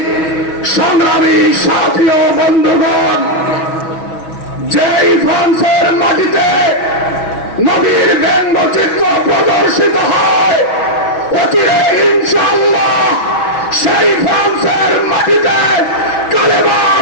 সংগ্রামী সাথী ও বন্ধুগণ, যেই ফ্রান্সের মাটিতে নবীর ব্যঙ্গচিত্র প্রদর্শিত হয়, অচিরে ইনশাআল্লাহ সেই ফ্রান্সের মাটিতে কালেমার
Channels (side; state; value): right; late; 6.2 ms